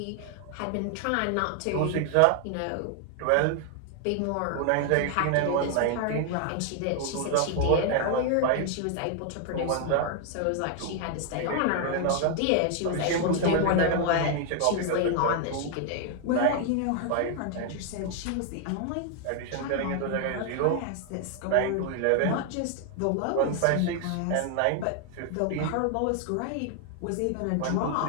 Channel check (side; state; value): both; different; correlation 0.00